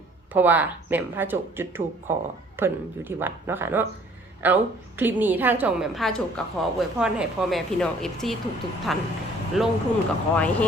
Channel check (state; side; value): normal; both; correlation 0.57